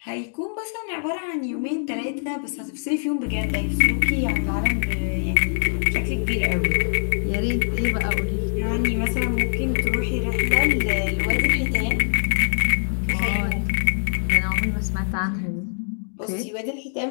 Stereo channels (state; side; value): silent; right; digital silence